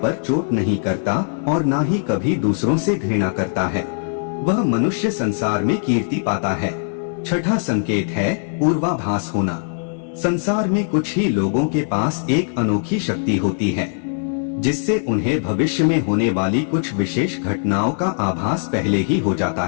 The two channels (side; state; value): right; silent; 65 dB below the other